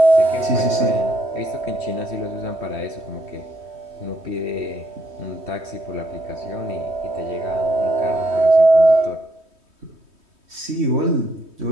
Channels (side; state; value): left; late; 3.2 ms